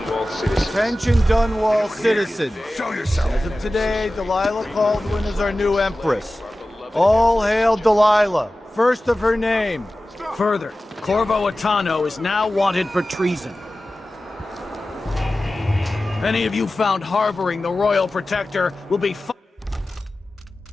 citizens. Attention, Dunwall citizens. Show yourself. As of today, Delilah Caldwin is our new Empress. All hail Delilah, first of her name. Further, Corvo Attano is now wanted for treason. Any of you found harboring the Royal Protector will be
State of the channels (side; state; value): both; normal; correlation 0.96